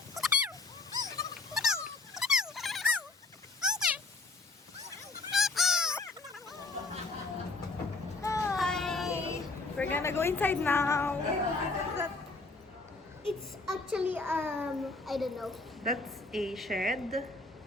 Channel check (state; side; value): quieter; right; 3.5 dB